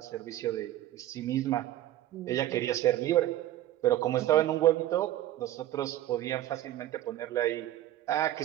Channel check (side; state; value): left; quieter; 13.5 dB